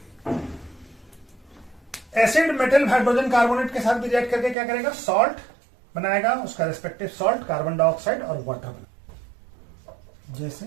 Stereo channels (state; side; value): drops out; left; at 4.5 s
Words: Acid metal hydrogen carbonate के साथ भी रिएक्ट करके क्या करेगा, सॉल्ट बनाएगा, उसका रिस्पेक्टिव सॉल्ट, कार्बन डाइऑक्साइड और वाटर बना,